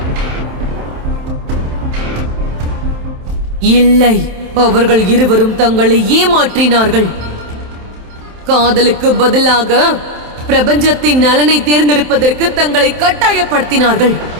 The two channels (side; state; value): left; late; 27 ms